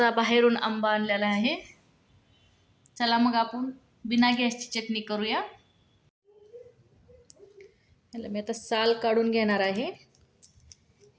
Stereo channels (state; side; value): identical; both; correlation 1.00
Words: बाहेरून आंबा आणलेला आहे. चला मग आपण बिना गॅसची चटणी करूया. याला मी आता साल काढून घेणार आहे.